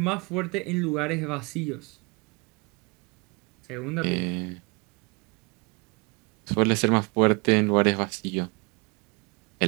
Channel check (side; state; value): left; quieter; 28.5 dB